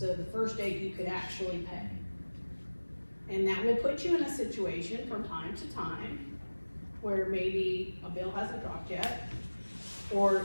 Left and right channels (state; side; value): inverted; both; correlation -1.00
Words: the first date you could actually pay. And that will put you in a situation from time to time where maybe a bill hasn't dropped yet,